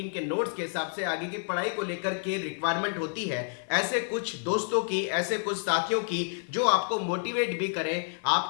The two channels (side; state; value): right; silent; 55 dB below the other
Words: के नोट्स के हिसाब से आगे की पढ़ाई को लेकर के रिक्वायरमेंट होती है। ऐसे कुछ दोस्तों की, ऐसे कुछ साथियों की जो आपको मोटिवेट भी करें,